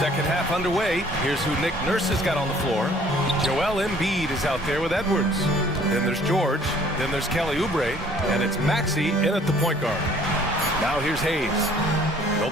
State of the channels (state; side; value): normal; both; correlation 0.56